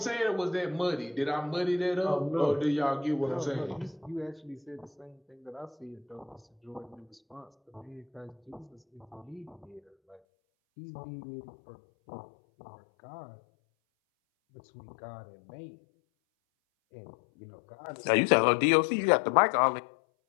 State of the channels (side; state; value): right; drops out; at 10.2 s